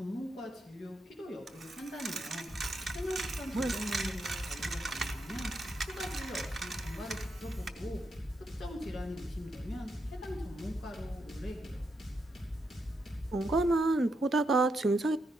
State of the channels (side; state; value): both; normal; correlation 0.82